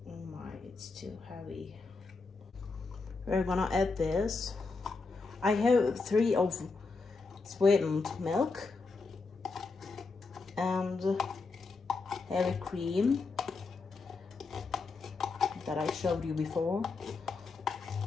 Oh my, it's too heavy. We're gonna add this. I have 3 of sweetened milk and heavy cream that I showed you before.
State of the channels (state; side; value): quieter; right; 4.1 dB